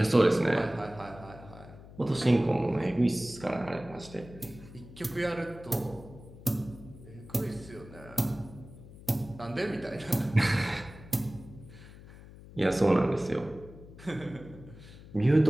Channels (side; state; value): left; noise; hum, 18 dB below the sound